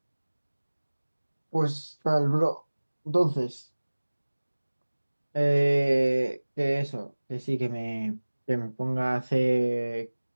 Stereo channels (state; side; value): inverted; both; correlation -1.00